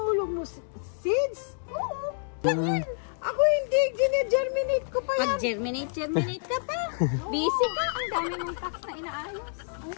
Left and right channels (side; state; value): right; silent; digital silence